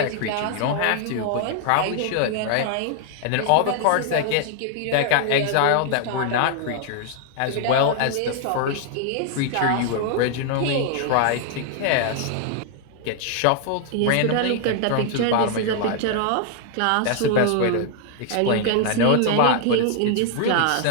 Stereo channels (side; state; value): both; different; correlation 0.00